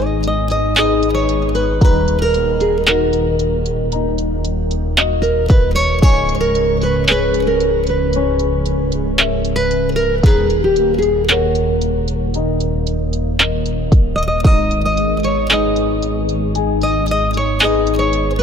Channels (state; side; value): normal; both; correlation 0.67